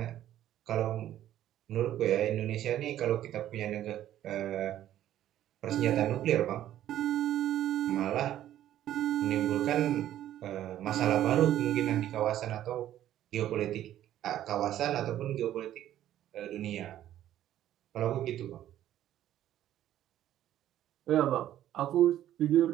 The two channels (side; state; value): left; quieter; 12.3 dB